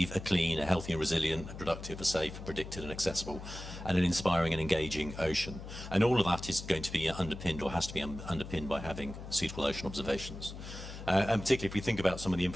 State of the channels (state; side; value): noise; left; hum, 11 dB below the sound